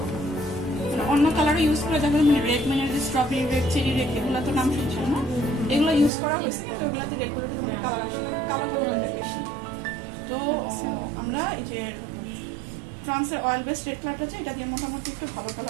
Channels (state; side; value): drops out; left; at 6.1 s